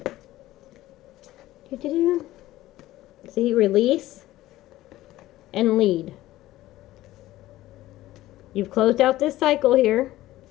See, release and lead. You've closed out this cycle here.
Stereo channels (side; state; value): right; quieter; 15.9 dB